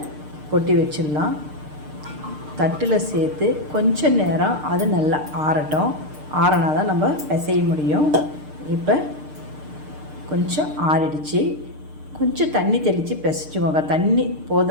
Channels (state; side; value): late; left; 6.6 ms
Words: கொட்டி வச்சிடலாம். தட்டில் சேர்த்து கொஞ்சம் நேரம் அது நல்லா ஆறட்டும். ஆறினா தான் நம்ம பிசைய முடியும். இப்போ கொஞ்சம் ஆறிடுச்சு. கொஞ்சம் தண்ணி தெளித்து பிசைஞ்சுக்கோங்க. தண்ணி